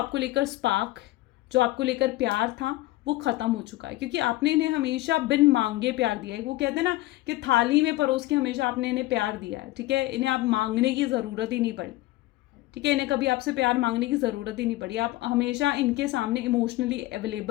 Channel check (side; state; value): right; quieter; 17.9 dB